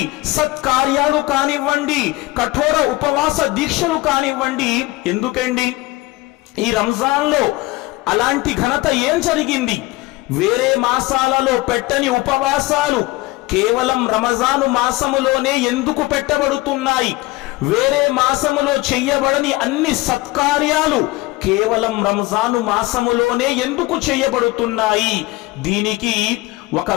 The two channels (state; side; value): quieter; right; 20.5 dB